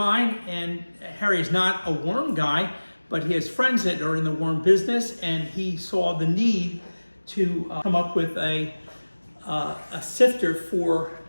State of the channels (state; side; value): inverted; both; correlation -1.00